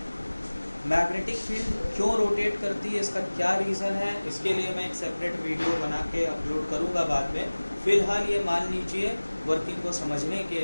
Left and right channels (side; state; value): both; inverted; correlation -1.00